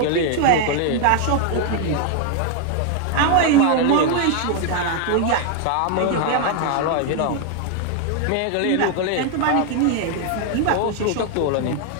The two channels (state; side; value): different; both; correlation 0.00